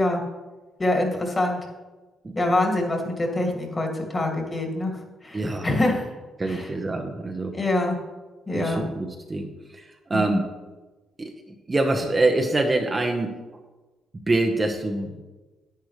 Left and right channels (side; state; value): both; normal; correlation 0.85